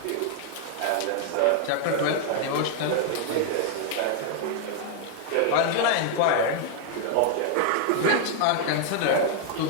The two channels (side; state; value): both; different; correlation 0.00